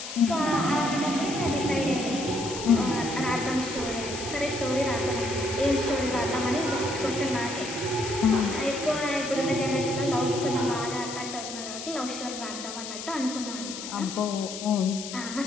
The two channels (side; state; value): left; noise; hiss, 9 dB below the sound